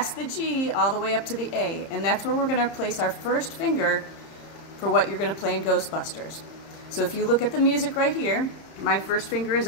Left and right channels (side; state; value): right; late; 30 ms